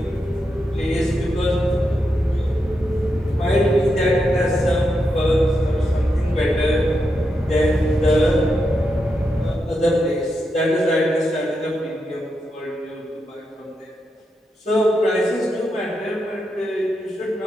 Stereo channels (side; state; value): both; normal; correlation 0.85